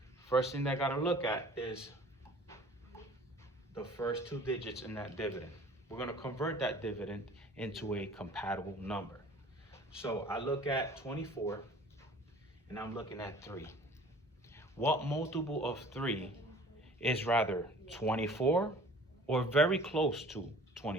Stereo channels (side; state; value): both; normal; correlation 0.48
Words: First thing that I gotta look at is the first 2 digits in that dividend. We're gonna convert that dividend into a compatible number. So I look at 24 and I'm looking at 3. What multiple of 3 is rather 24 or very close to